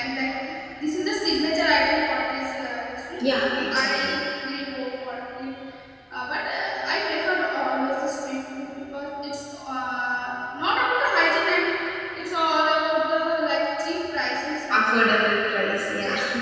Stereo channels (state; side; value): identical; both; correlation 1.00